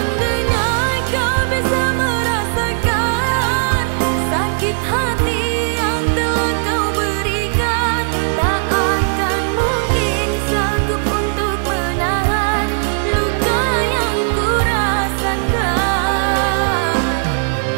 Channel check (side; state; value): left; silent; digital silence